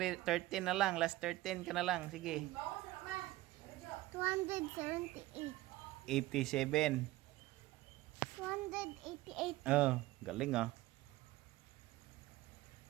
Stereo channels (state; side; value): quieter; left; 17.7 dB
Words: na lang. Last 13 ka na lang. Sige. 278. 87. 288. Galing ah.